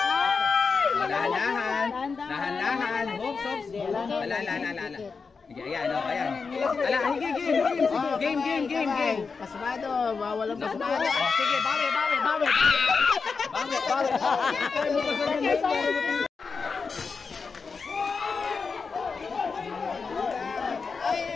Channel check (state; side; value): quieter; right; 5.0 dB